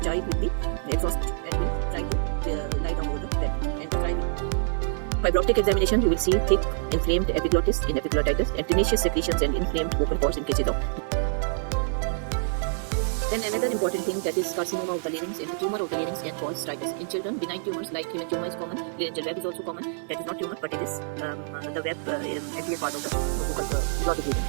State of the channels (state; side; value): silent; left; 60 dB below the other